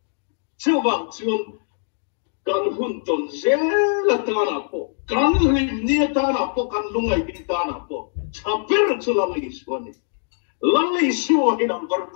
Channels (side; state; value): right; silent; digital silence